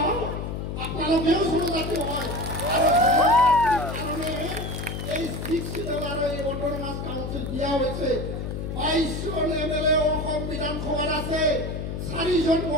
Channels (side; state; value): left; noise; hum, 5 dB below the sound